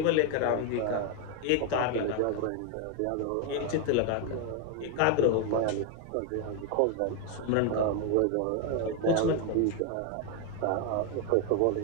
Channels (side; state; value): both; different; correlation 0.01